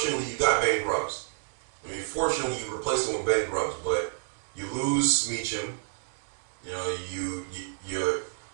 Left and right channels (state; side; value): silent; left; digital silence